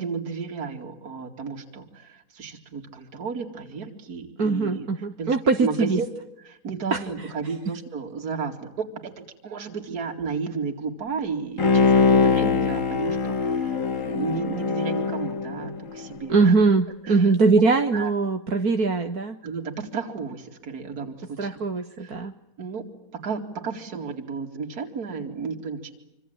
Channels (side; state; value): left; late; 4.2 ms